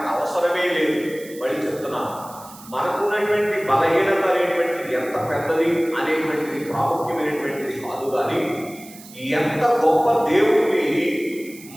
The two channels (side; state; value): right; noise; hiss, 19 dB below the sound